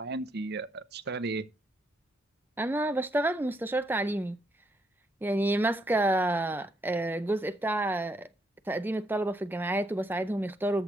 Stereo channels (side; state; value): both; normal; correlation 0.75